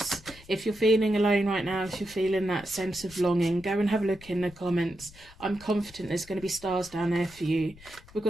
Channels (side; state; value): left; noise; rumble, 21 dB below the sound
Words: If you're feeling alone right now, if you're feeling that sense of longing, go and have a look in the comments. I'm confident there's going to be stars down there for you. We've